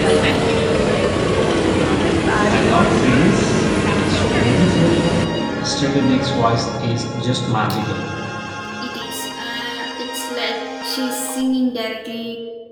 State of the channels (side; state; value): both; identical; correlation 1.00